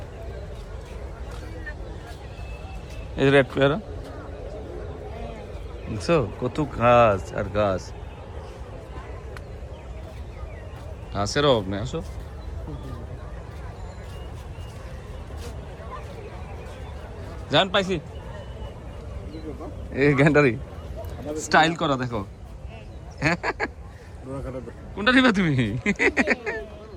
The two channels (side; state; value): both; identical; correlation 1.00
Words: এই যে রেড পেয়ারা দেখছো, কত গাছ আর গাছ, ঘাসের অভাব নেই। আসো জান, পাইছি এই গ্যান্ডারি স্টাইল করা, দেখো কোনটা নিবে তুমি?